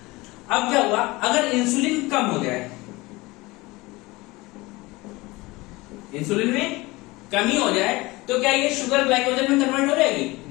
अब क्या हुआ, अगर इंसुलिन कम हो जाए, इंसुलिन में कमी हो जाए, तो क्या ये शुगर ग्लाइकोजन में कन्वर्ट हो जाएगी?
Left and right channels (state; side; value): quieter; right; 21.9 dB